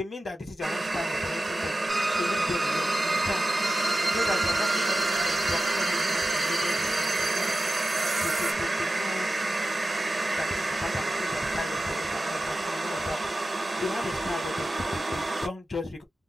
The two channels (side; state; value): both; normal; correlation 0.94